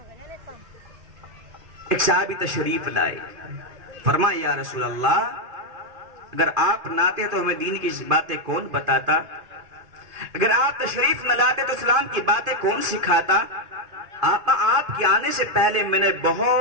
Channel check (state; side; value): late; left; 2.5 ms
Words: ایک صحابی تشریف لائے، فرمایا یا رسول اللہ، اگر آپ نہ آتے تو ہمیں دین کی باتیں کون بتاتا؟ اگر آپ تشریف نہ لاتے تو اسلام کی باتیں کون سکھاتا؟ آقا آپ کے آنے سے پہلے میں نے